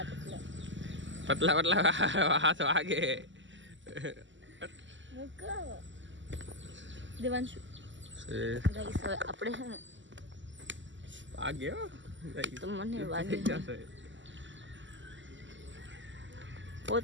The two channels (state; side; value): late; left; 0.54 ms